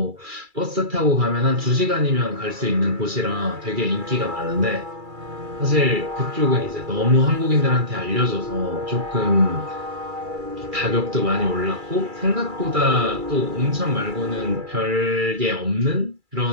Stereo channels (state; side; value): late; left; 2.3 ms